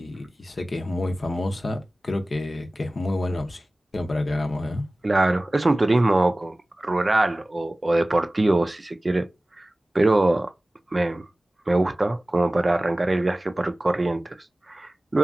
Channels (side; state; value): both; normal; correlation 0.97